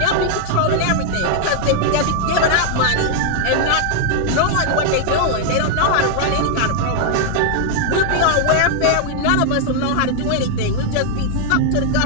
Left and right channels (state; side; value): different; both; correlation 0.00